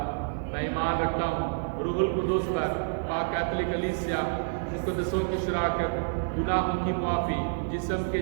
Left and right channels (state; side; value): silent; left; 59 dB below the other